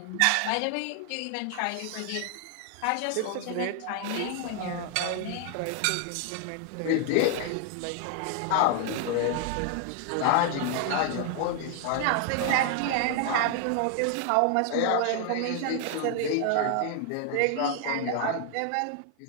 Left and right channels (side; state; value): both; different; correlation 0.00